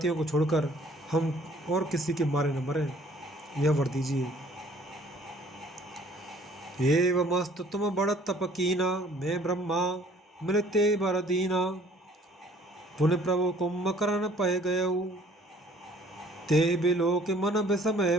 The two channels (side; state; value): both; normal; correlation 0.56